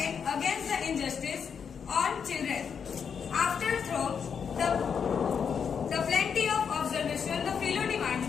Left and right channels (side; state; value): right; quieter; 6.8 dB